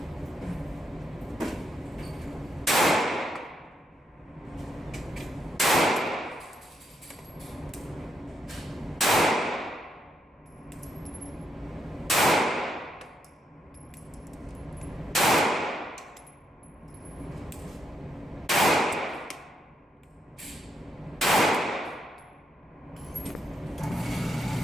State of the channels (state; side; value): normal; both; correlation 0.80